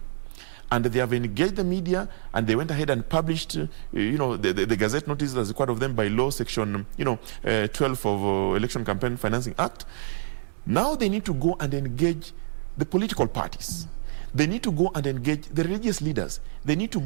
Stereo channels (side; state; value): left; silent; digital silence